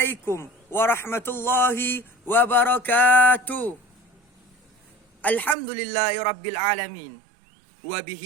warahmatullahi wabarakatuh. Alhamdulillahi rabbil alamin.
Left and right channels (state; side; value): drops out; left; at 5.6 s